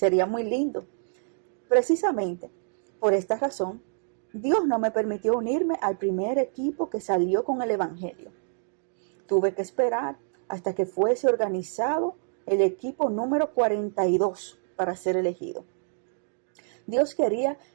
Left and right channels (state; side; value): silent; left; digital silence